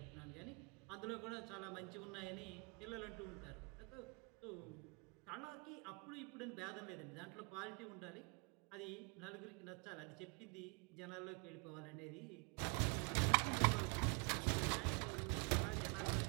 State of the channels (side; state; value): left; quieter; 32.8 dB